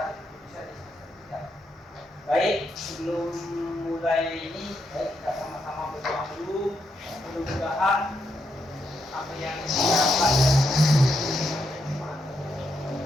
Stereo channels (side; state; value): both; normal; correlation 0.80